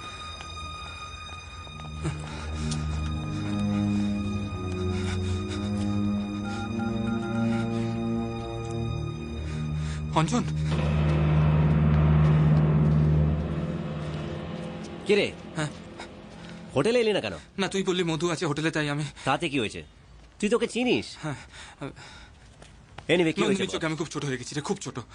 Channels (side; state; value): both; identical; correlation 1.00